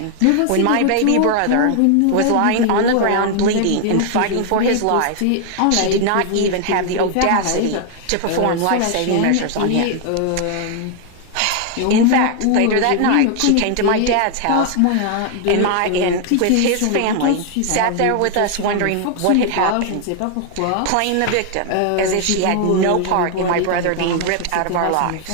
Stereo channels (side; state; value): both; different; correlation 0.00